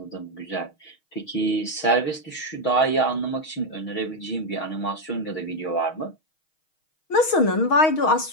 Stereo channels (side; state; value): right; late; 6.3 ms